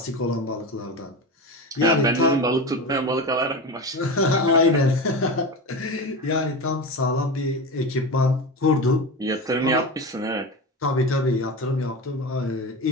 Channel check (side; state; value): both; normal; correlation 0.24